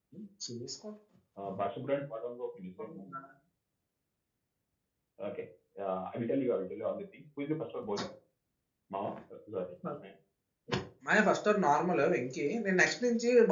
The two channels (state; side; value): identical; both; correlation 1.00